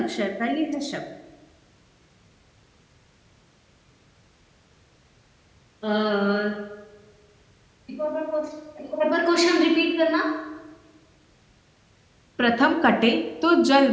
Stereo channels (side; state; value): both; identical; correlation 1.00